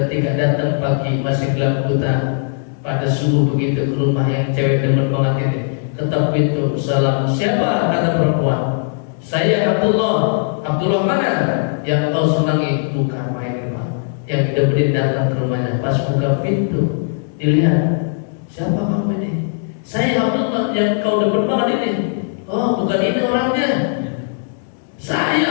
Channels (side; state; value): right; silent; digital silence